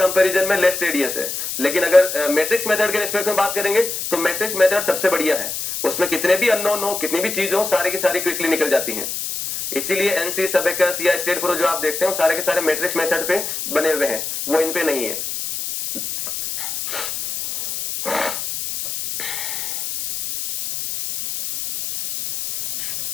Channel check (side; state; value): left; noise; hiss, 5 dB below the sound